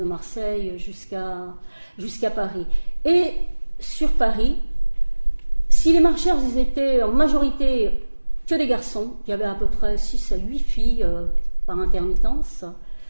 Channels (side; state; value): both; inverted; correlation -1.00